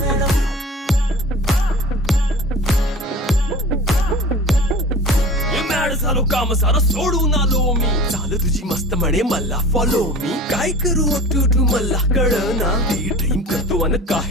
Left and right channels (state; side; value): normal; both; correlation 0.39